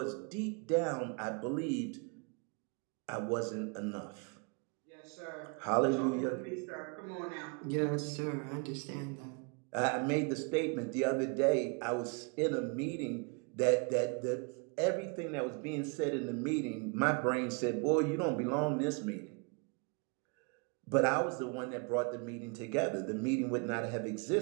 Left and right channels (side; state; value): left; quieter; 34.4 dB